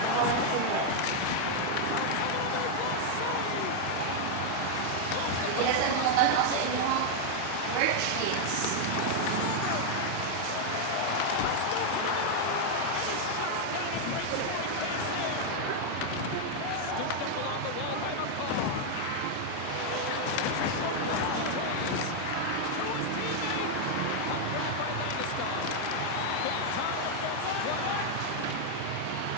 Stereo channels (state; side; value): different; both; correlation 0.00